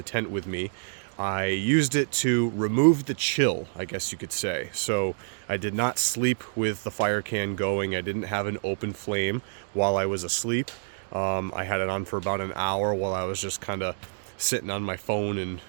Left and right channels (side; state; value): left; silent; digital silence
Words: tent with me. I used it to remove the chill, I guess you could say. So I did not sleep with the fire can going. I didn't have an open flame while I was asleep. I had it on for about an hour while I was just kind of sitting on my phone and